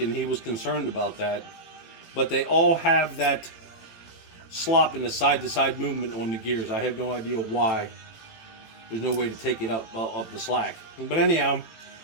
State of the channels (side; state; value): right; late; 18 ms